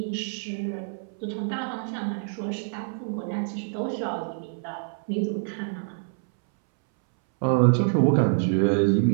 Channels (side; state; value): left; silent; 61 dB below the other